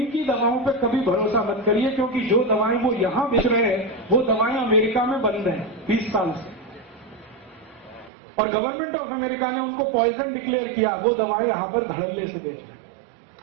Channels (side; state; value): left; drops out; at 8.1 s